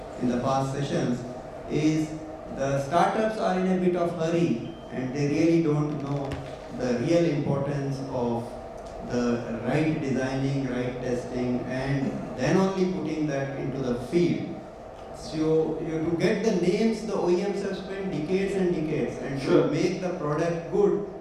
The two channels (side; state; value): both; identical; correlation 1.00